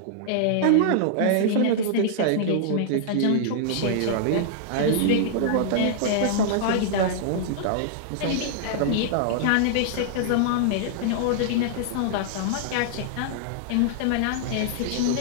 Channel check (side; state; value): both; different; correlation -0.01